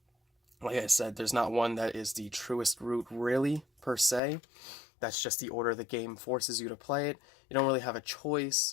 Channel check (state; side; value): drops out; right; at 4.2 s